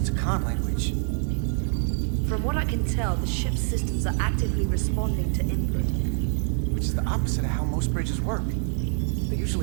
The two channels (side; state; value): left; silent; 61 dB below the other